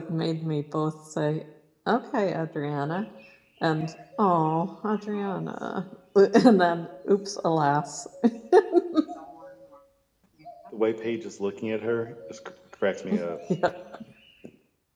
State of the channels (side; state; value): both; identical; correlation 1.00